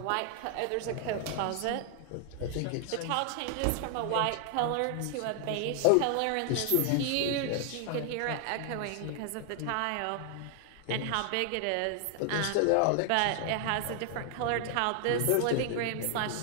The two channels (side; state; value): both; different; correlation 0.00